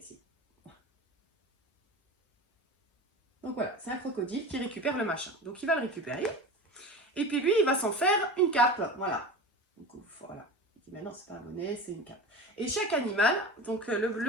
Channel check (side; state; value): both; normal; correlation 0.31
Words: Donc voilà, c'est un crocodile qui récupère le machin. Donc il va le récupérer. Et puis lui, il va s'en faire une cape. Voilà. Donc voilà. Il dit, mais non, c'est pas un bonnet, c'est une cape. Et chaque animal, donc